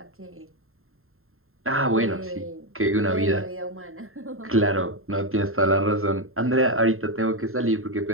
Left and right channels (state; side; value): late; left; 0.61 ms